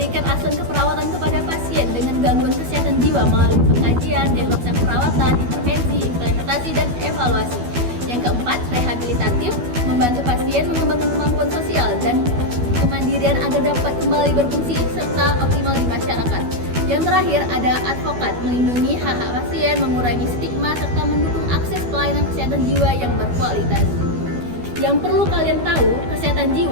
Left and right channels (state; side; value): late; left; 12 ms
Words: asuhan keperawatan kepada pasien dengan gangguan kesehatan jiwa melalui pengkajian, diagnosa perawatan, intervensi, implementasi, dan evaluasi. Yang keempat, rehabilitatif, membantu pasien mengembangkan kemampuan sosial dan kemandirian agar dapat kembali berfungsi serta optimal di masyarakat. Yang terakhir, ada advokat, melindungi hak-hak pasien, mengurangi stigma, serta mendukung akses pelayanan kesehatan jiwa yang berkualitas. Yang perlu kalian tahu, kesehatan